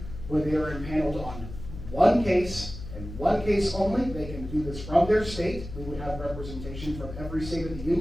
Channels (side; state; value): left; noise; hum, 11 dB below the sound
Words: where they are impaneled on one case, and one case only. They can do this from their state. We would have representation from every state of the